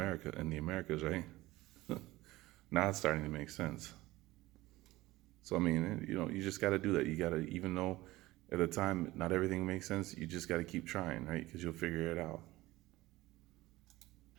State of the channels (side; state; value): left; quieter; 18.5 dB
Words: in the Americas, right? Now it's starting to make sense. So, I mean, you just got to do that. You got to, even though at the time not everything makes sense, you just got to keep trying, right? Because you'll figure it out.